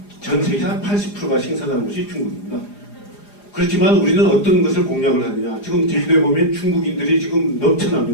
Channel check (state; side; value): late; right; 4.9 ms